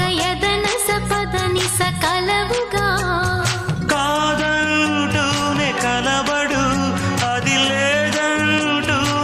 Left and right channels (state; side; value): identical; both; correlation 1.00